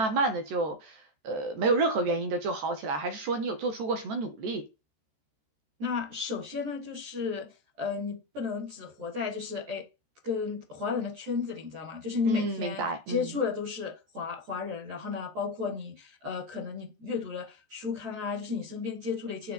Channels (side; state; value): left; late; 14 ms